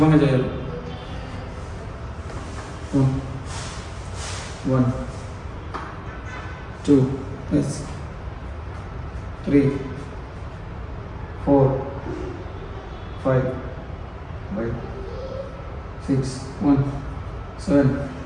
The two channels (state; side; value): identical; both; correlation 1.00